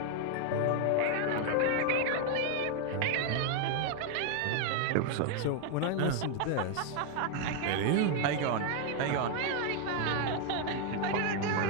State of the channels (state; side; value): different; both; correlation 0.00